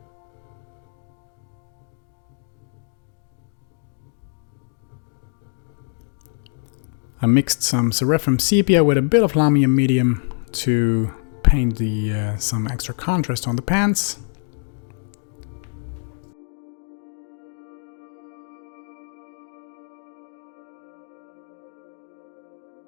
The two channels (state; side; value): silent; right; digital silence